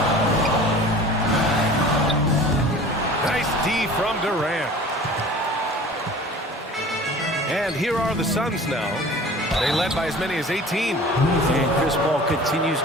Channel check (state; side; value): normal; both; correlation 0.43